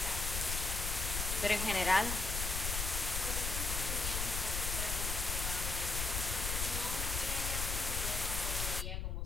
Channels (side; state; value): left; noise; rumble, 2 dB below the sound